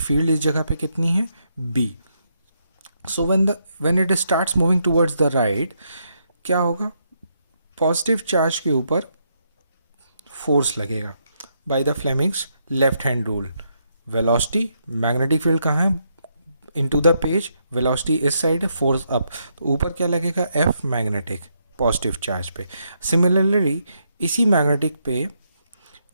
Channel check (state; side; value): inverted; both; correlation -0.78